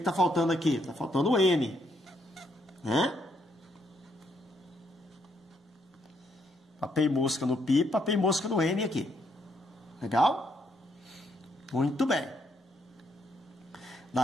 faltando aqui? Está faltando o N. Né? Papei mosca no π, papei mosca no N aqui. Legal? Muito bem.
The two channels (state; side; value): normal; both; correlation 0.74